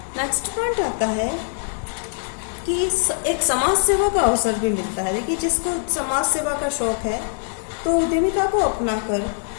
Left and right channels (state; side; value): silent; right; 62 dB below the other